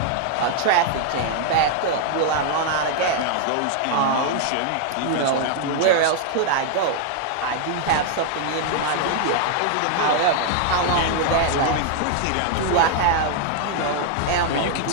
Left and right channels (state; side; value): different; both; correlation 0.00